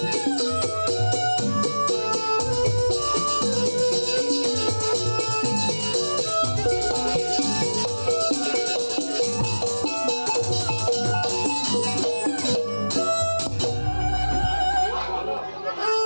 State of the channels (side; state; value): both; inverted; correlation -1.00